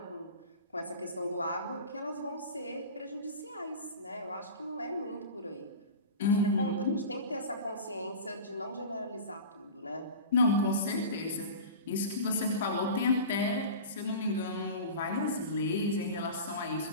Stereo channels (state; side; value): inverted; both; correlation -0.33